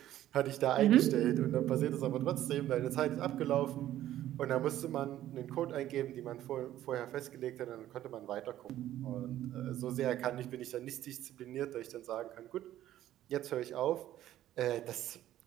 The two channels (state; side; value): quieter; left; 13.0 dB